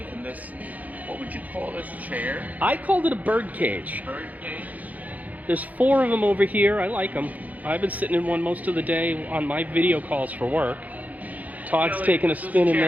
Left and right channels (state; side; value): late; left; 0.078 ms